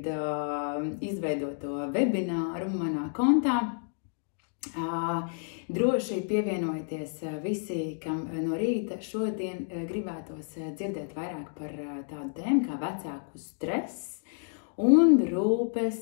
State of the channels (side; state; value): right; silent; digital silence